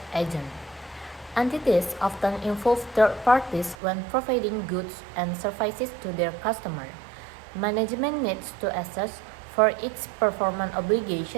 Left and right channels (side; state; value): left; drops out; at 3.8 s